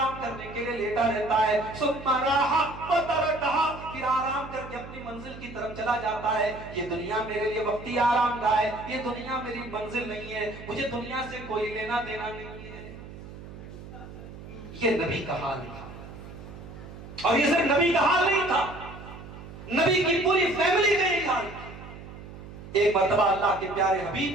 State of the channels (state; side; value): noise; right; hum, 14 dB below the sound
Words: करने के लिए लेटा रहता है। सुम्मा राहा व तरकहा, फिर आराम करके अपनी मंजिल की तरफ चला जाता है। ये दुनिया मेरे लिए वक्ती आराम गाह है, ये दुनिया मेरी मंजिल नहीं है, मुझे दुनिया से कोई लेना देना नहीं है। ये नबी का हाल था। और ये सिर्फ नबी का हाल नहीं था, नबी की पूरी फैमिली का यही हाल था। एक मर्तबा अल्लाह के प्यारे